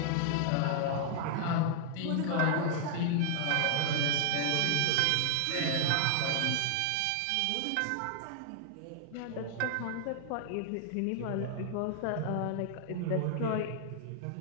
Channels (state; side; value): different; both; correlation 0.00